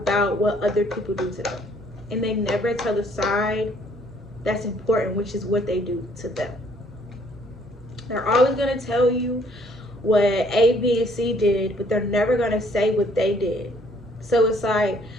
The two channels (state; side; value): normal; both; correlation 0.63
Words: what other people do to them. And they never tell the side that's important, which is what they do to them. They're always going to tell you what A, B, and C did, but they're never going to say what they did. So it's like,